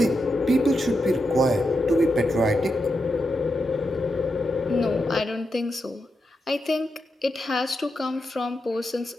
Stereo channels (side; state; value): both; normal; correlation 0.86